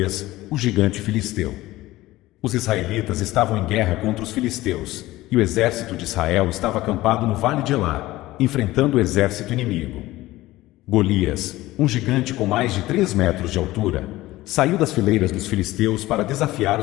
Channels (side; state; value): right; quieter; 17.4 dB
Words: o gigante filisteu. Os israelitas estavam em guerra contra os filisteus, e o exército de Israel estava acampado no vale de Elá, enfrentando o exército inimigo. Golias, um gigante com mais de 3 metros de altura, saiu das fileiras dos filisteus para desafiar